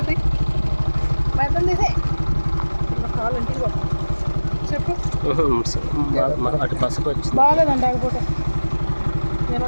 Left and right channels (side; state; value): both; inverted; correlation -1.00